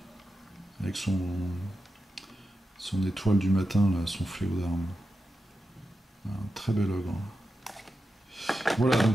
avec son étoile du matin, là, son fléau d'armes. Un très bel ogre. Voilà,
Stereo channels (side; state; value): both; normal; correlation 0.90